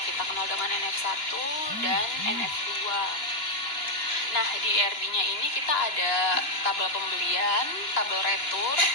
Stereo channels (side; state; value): right; late; 2.9 ms